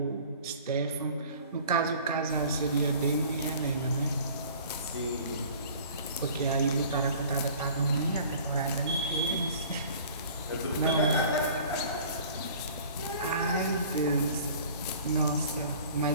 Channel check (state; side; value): inverted; both; correlation -0.47